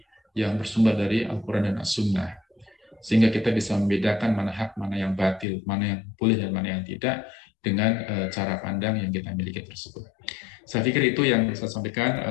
yang bersumber dari Al-Quran dan As-Sunnah, sehingga kita bisa membedakan mana hak, mana yang batil, mana yang boleh dan mana yang tidak dengan cara pandang yang kita miliki tersebut. Saya pikir itu yang saya sampaikan.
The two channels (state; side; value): drops out; right; at 5.5 s